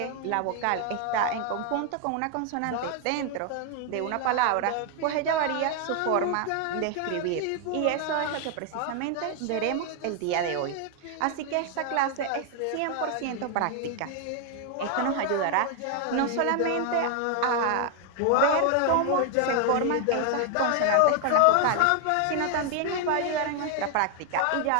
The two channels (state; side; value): different; both; correlation 0.00